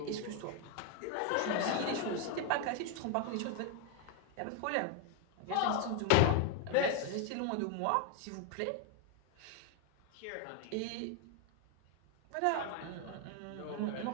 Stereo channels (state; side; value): different; both; correlation 0.01